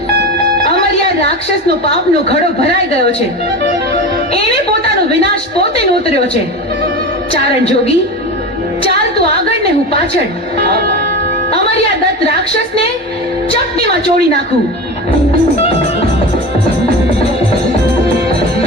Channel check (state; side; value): normal; both; correlation 0.27